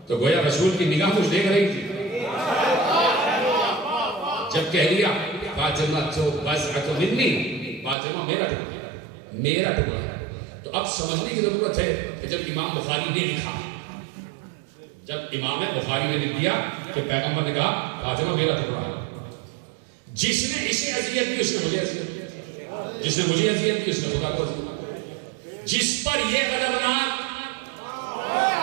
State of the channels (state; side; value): drops out; left; at 8.0 s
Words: تو گویا رسول کی نگاہ کچھ دیکھ رہی تھی. جب کہہ دیا فاطمہ تو بضعۃ منی، فاطمہ میرا ٹکڑا، میرا ٹکڑا. تو اب سمجھنے کی ضرورت ہے کہ جب امام بخاری نے لکھا، جب امام بخاری نے لکھ دیا کہ پیغمبر نے کہا فاطمہ میرا ٹکڑا ہے، جس نے اسے اذیت دی اس نے مجھے اذیت دی، جس نے مجھے اذیت دی اس نے خدا کو اذیت دی. جس پر یہ غضبناک